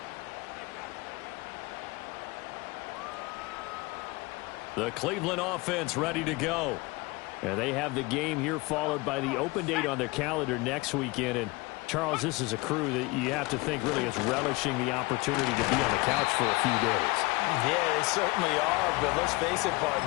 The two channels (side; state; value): right; quieter; 23.7 dB